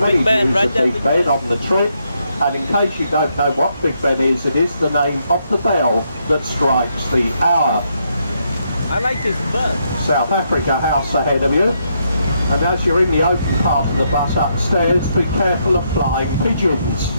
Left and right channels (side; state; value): both; inverted; correlation -0.77